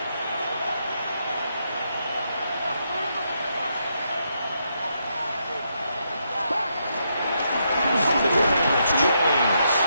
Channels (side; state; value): both; inverted; correlation -0.79